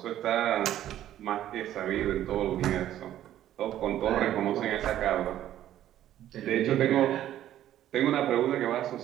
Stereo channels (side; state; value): left; quieter; 12.2 dB